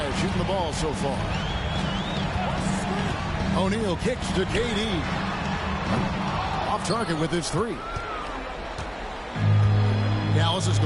shooting the ball so far. O'Neal kicks to KD. Off target with his three. Dallas has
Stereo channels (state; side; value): identical; both; correlation 1.00